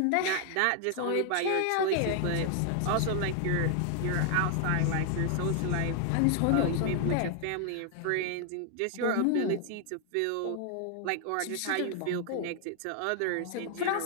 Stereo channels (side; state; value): both; different; correlation 0.00